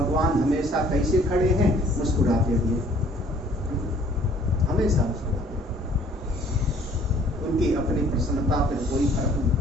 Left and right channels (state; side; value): normal; both; correlation 0.56